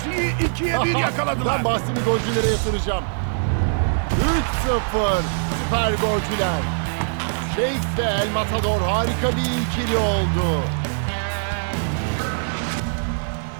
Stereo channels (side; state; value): left; silent; 64 dB below the other